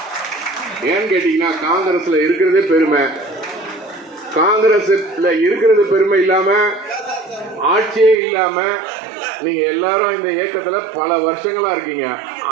ஏன்னு கேட்டீங்கன்னா, காங்கிரஸ்ல இருக்கிறதே பெருமை. காங்கிரஸ்ல இருக்கிறது பெருமை இல்லாம, ஆட்சியே இல்லாம நீங்க எல்லாரும் இந்த இயக்கத்துல பல வருஷங்களா இருக்கீங்க.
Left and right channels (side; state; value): left; drops out; at 8.2 s